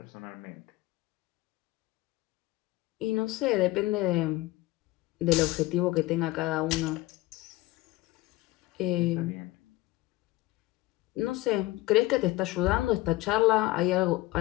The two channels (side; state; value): right; quieter; 18.4 dB